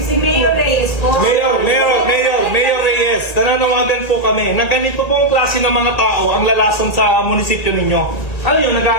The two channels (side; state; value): right; late; 1.8 ms